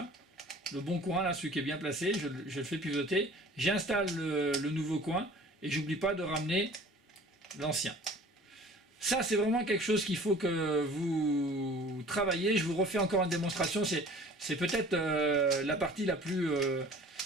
Le bon coin, là, celui qui est bien placé, je le fais pivoter. J'installe le nouveau coin et j'oublie pas de ramener l'ancien. Ça, c'est vraiment quelque chose qu'il faut que vous travaillez. Je vous refais encore une démonstration. C'est peut-être la partie la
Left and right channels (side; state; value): both; normal; correlation 0.47